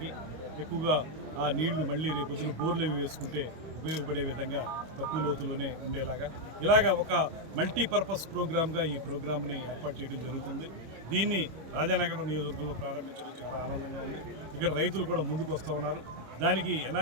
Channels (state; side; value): late; left; 25 ms